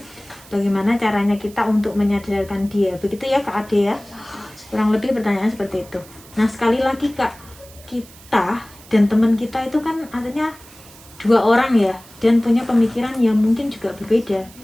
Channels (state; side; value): noise; right; hiss, 22 dB below the sound